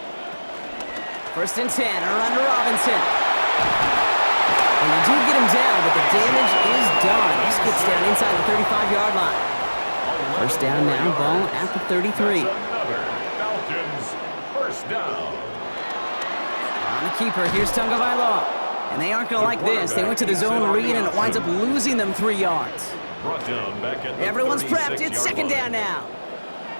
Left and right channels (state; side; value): inverted; both; correlation -1.00